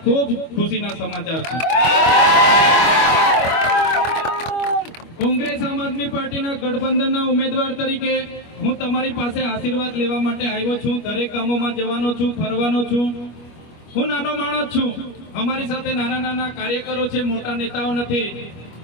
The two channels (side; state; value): right; late; 25 ms